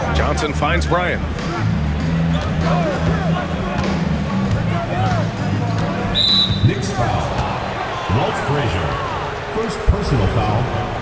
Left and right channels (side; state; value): both; identical; correlation 1.00